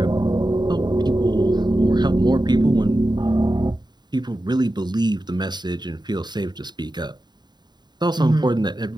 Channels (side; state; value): left; late; 0.21 ms